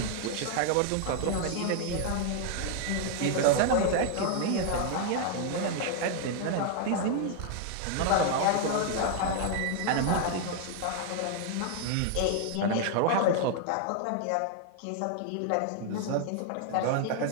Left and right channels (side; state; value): both; different; correlation 0.00